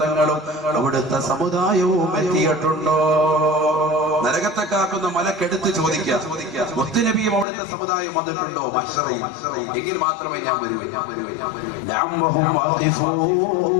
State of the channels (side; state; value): right; drops out; at 7.5 s